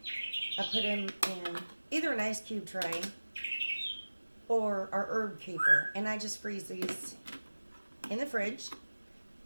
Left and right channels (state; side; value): inverted; both; correlation -1.00